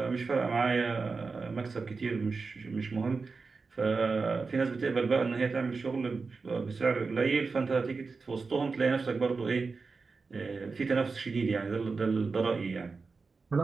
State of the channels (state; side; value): quieter; left; 4.4 dB